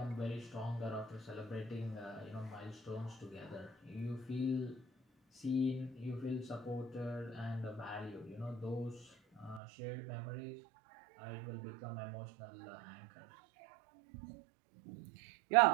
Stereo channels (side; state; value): left; drops out; at 9.6 s